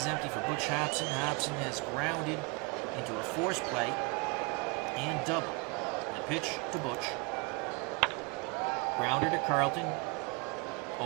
empty for Butch Hobson. Hobson has grounded into a force play and double. The pitch to Butch. Grounder to Carlton.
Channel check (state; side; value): quieter; left; 29.7 dB